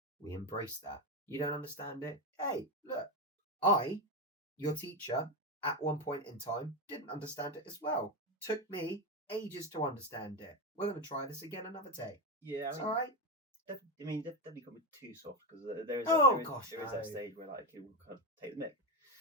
We embrace that. You don't understand it? Hey, look, your teacher, at one point in time, didn't understand it as well. Took me ages to understand it. We're going to try this again another day. Yeah, it's all right. Definitely can't be too soft, because there is that stage where like it will kind of take the mick.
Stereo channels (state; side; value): normal; both; correlation 0.13